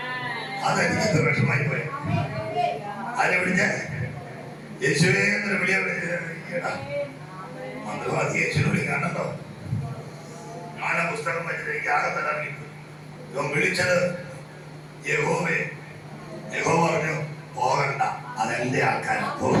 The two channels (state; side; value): identical; both; correlation 1.00